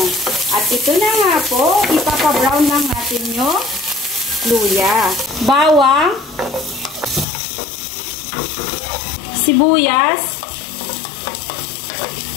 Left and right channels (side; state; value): right; drops out; at 7.2 s